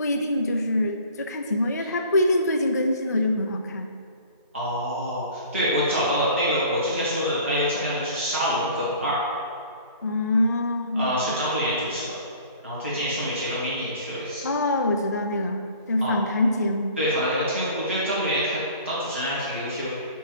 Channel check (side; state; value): both; inverted; correlation -0.47